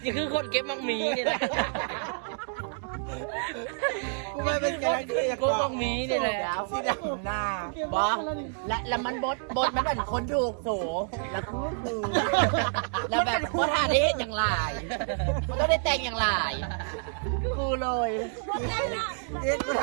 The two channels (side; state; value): left; silent; 59 dB below the other